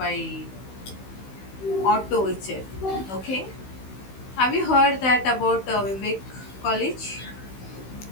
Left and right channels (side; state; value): right; late; 16 ms